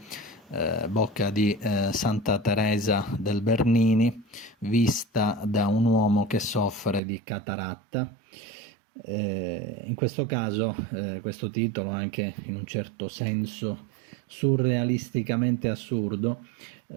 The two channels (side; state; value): left; drops out; at 7.0 s